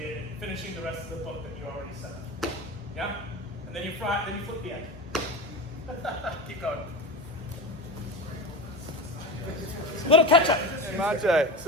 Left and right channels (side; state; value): both; normal; correlation 0.25